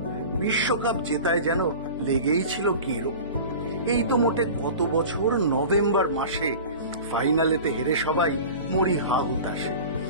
বিশ্বকাপ জেতায় যেন লেগেই ছিল কেরো। এই তো মোটে কত বছর নভেম্বর মাসে ফাইনালেতে হেরে সবাই মরি হা হুতাশে।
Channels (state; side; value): inverted; both; correlation -0.36